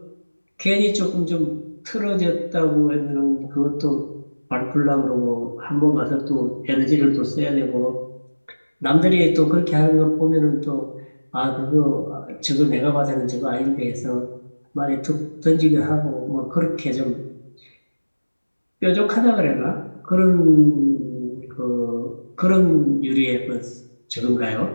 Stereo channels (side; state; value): both; inverted; correlation -1.00